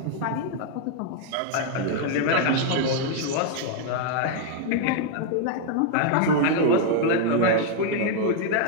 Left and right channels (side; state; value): both; different; correlation 0.00